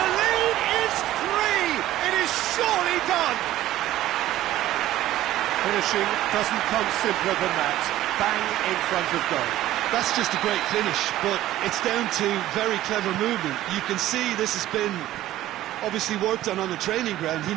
the lead is 3. It is surely done. Finishing doesn't come simpler than that. Bang in front of goal. That's just a great finish, but it's down to very clever movement. You can see this has been obviously worked on the training ground. He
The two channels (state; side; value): quieter; left; 14.4 dB